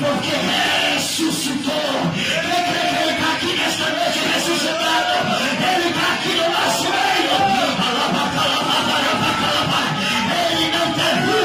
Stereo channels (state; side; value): identical; both; correlation 1.00